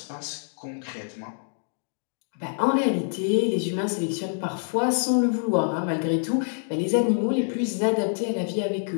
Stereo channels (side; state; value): right; silent; digital silence